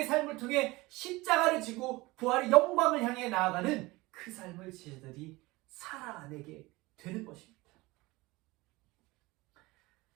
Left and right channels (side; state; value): left; quieter; 21.6 dB